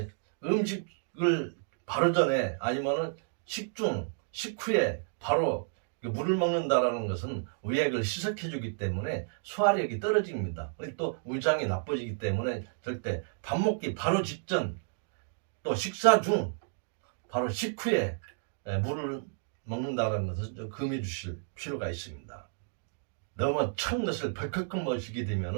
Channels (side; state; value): left; silent; digital silence